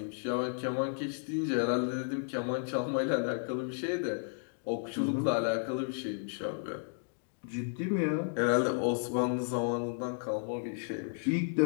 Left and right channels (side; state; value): right; silent; digital silence